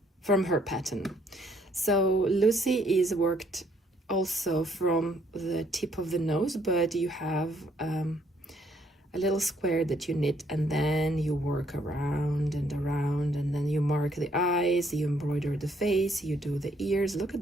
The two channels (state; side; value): normal; both; correlation 0.67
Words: from her pattern. So Lucy is worked also from the tip of the nose, but you have a little square that you knit, and then you work around, and then you mark the eyes, you embroider the face, you do the ears. Look at